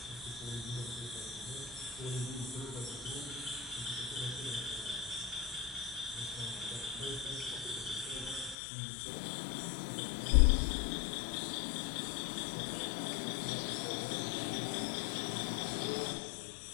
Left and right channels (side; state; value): right; drops out; at 8.6 s